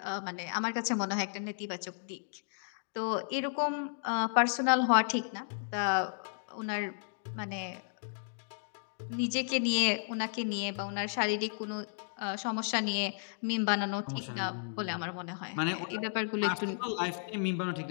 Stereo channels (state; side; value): silent; right; digital silence